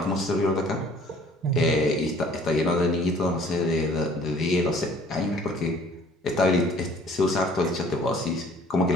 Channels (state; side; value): normal; both; correlation 0.54